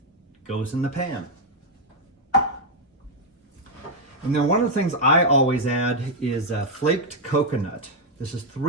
Goes in the pan. And then one of the things I always add is flaked coconut. This is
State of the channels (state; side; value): normal; both; correlation 0.00